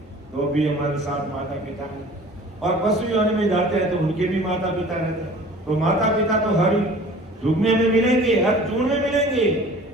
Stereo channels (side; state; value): both; normal; correlation 0.46